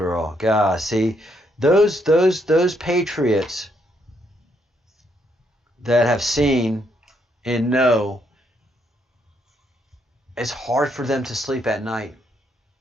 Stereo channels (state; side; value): normal; both; correlation 0.74